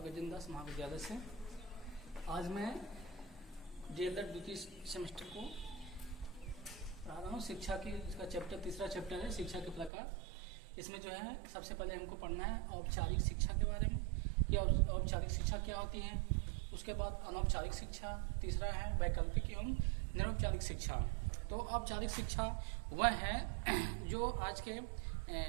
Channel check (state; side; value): drops out; left; at 9.9 s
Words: दास महाविद्यालय से। आज मैं डीएलएड द्वितीय सेमेस्टर को पढ़ा रहा हूँ। शिक्षा की इसका चैप्टर तीसरा चैप्टर है शिक्षा के प्रकार। इसमें जो है सबसे पहले हमको पढ़ना है औपचारिक शिक्षा के बारे में कि औपचारिक शिक्षा क्या होती है। उसके बाद अनौपचारिक शिक्षा, तीसरा है वैकल्पिक एवं निरौपचारिक शिक्षा। तो औपचारिक शिक्षा वह है जो आज के